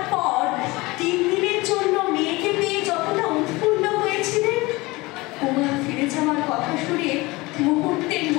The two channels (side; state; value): right; quieter; 22.1 dB